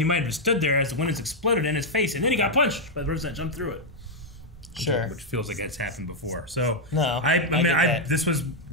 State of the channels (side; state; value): both; normal; correlation -0.01